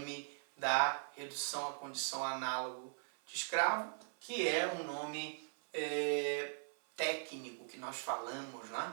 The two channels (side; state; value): left; silent; 51 dB below the other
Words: da redução à condição análogo de escravo, que é um nome técnico que nós falamos,